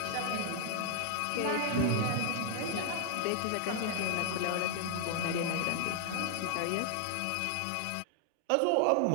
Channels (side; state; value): both; different; correlation 0.00